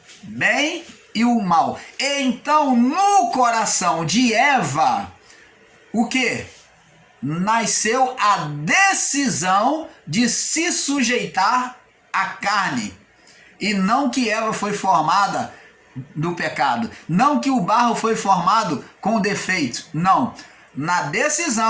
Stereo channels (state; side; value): identical; both; correlation 1.00